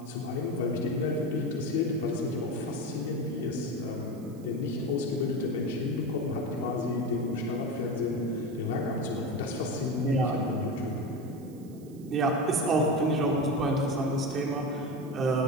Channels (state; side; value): noise; right; hiss, 27 dB below the sound